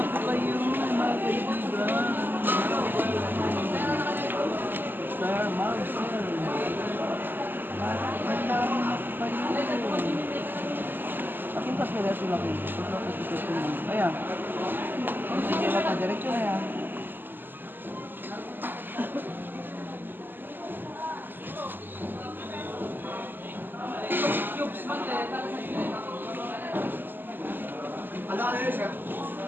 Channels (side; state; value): left; late; 0.092 ms